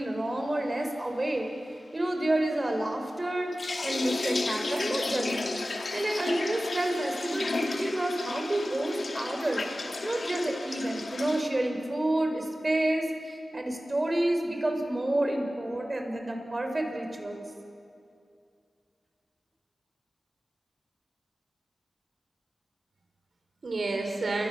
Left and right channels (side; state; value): both; normal; correlation 0.95